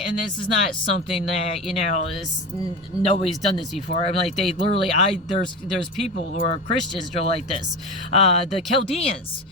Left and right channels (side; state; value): both; normal; correlation 0.25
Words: and this is not something that, nobody's done this before. I'm like, they literally, there's people who are Christians who are like this. The Chaldeans